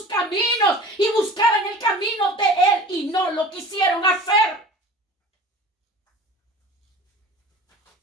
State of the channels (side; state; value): both; normal; correlation 0.41